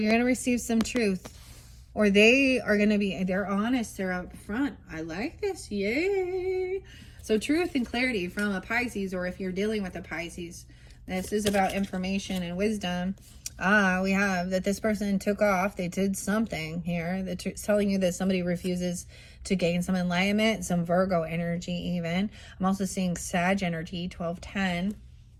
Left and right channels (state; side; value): identical; both; correlation 1.00